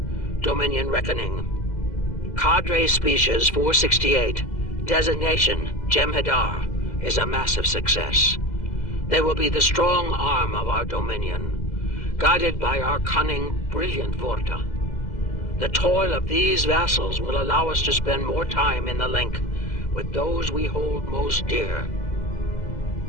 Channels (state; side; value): late; right; 2.0 ms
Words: Dominion Reckoning. Cadre Species 468, designation Jem'Hadar, is a massive success. They will be the strong arm of our Dominion, guided by our cunning, brilliant Vorta. The toil of these vassals will allow us to spend more time in the link with those we hold most dear.